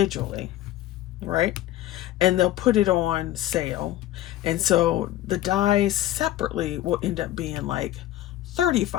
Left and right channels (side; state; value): right; quieter; 14.2 dB